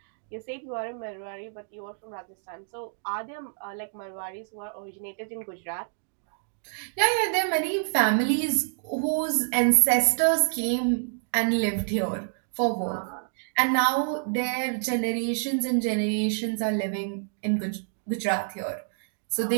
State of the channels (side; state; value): left; silent; digital silence